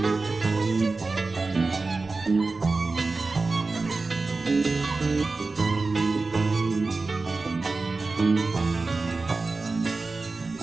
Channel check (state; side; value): quieter; left; 3.7 dB